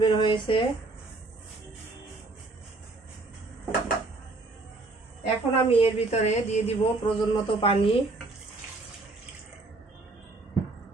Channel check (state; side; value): quieter; left; 3.3 dB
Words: হয়েছে। এখন আমি এর ভিতরে দিয়ে দিব প্রয়োজন মতো পানি।